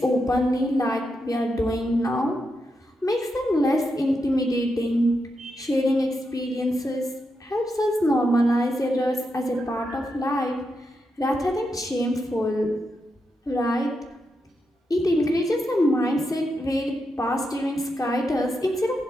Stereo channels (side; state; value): both; normal; correlation 0.85